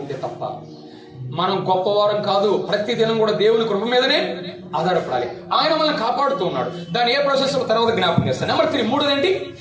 ఉంటే తప్ప. మనం గొప్పవారం కాదు, ప్రతి దినం కూడా దేవుని కృప మీదనే ఆధారపడాలి. ఆయన మనల్ని కాపాడుతూ ఉన్నాడు. దాని ఏ ప్రాసెస్ తర్వాత జ్ఞాపకం చేస్తాను. నెంబర్ 3, మూడోదేంటి?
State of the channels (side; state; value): both; identical; correlation 1.00